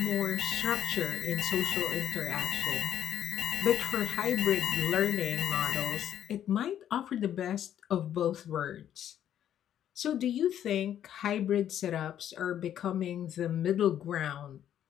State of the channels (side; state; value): right; quieter; 10.5 dB